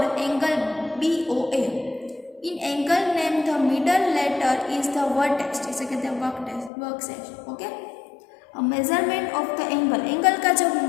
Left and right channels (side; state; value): right; drops out; at 6.7 s